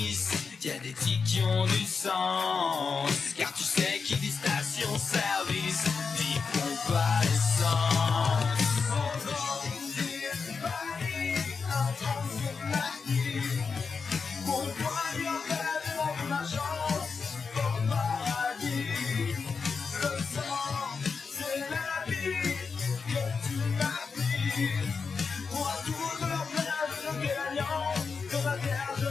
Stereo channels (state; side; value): quieter; right; 5.2 dB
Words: y a des tics qui ont du sens. Car tu sais qui dit station-service, dit pompe à essence.